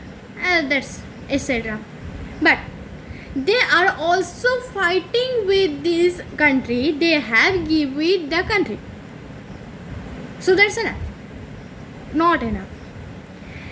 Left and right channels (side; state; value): both; identical; correlation 1.00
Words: that's etc. But they are also fighting with this country. They have given the country, so that's enough. Not enough.